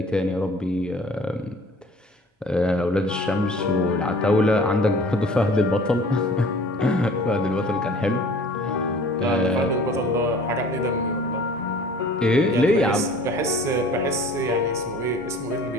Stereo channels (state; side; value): normal; both; correlation 0.48